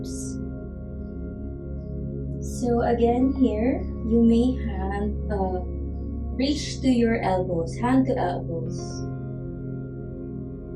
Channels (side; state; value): both; identical; correlation 1.00